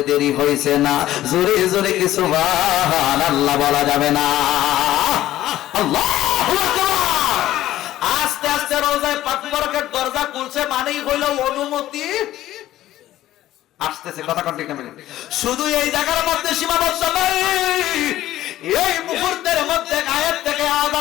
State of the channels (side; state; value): right; quieter; 14.2 dB